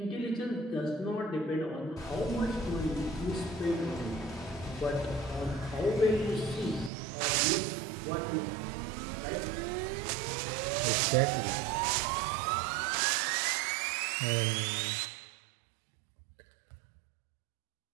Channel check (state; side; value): drops out; left; at 6.9 s